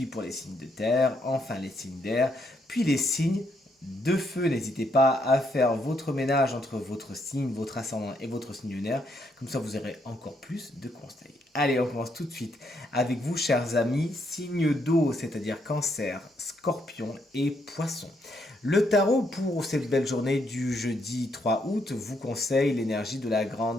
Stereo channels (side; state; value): both; normal; correlation 0.75